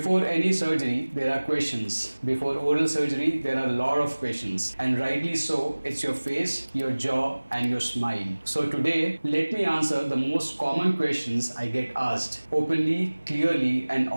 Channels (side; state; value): both; inverted; correlation -1.00